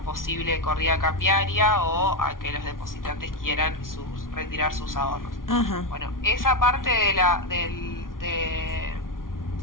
posible corrida cambiaria o a que los depositantes quieran retirar sus ahorros. Ajá. Bueno, esa parte de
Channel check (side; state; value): right; late; 0.90 ms